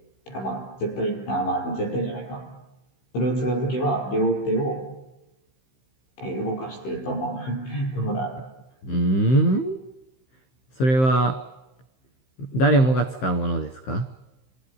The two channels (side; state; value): right; late; 15 ms